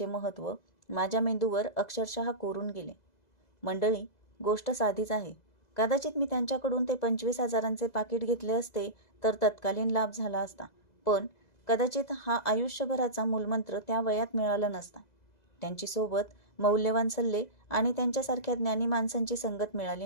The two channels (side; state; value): right; late; 2.0 ms